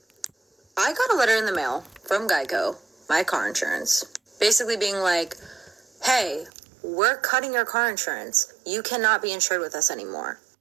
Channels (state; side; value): drops out; left; at 6.5 s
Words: I got a letter in the mail from Geico, my car insurance, basically being like, hey, we're cutting your car insurance. You cannot be insured with us anymore.